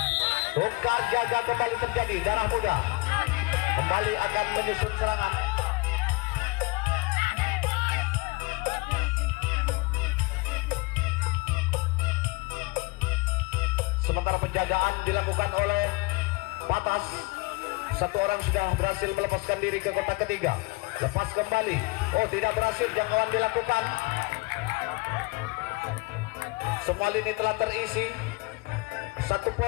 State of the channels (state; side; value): quieter; right; 24.8 dB